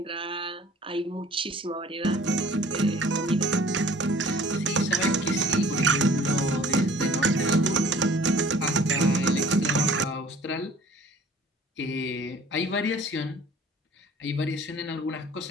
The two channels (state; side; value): normal; both; correlation 0.50